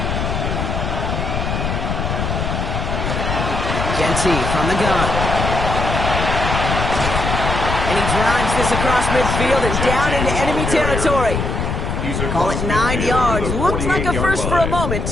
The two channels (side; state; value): left; noise; rumble, 2 dB below the sound